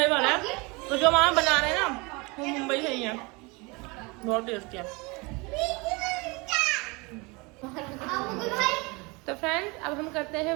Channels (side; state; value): left; quieter; 27.1 dB